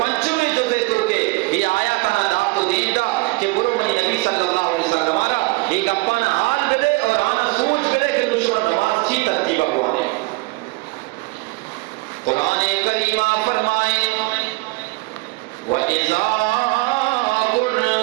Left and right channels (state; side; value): quieter; left; 24.1 dB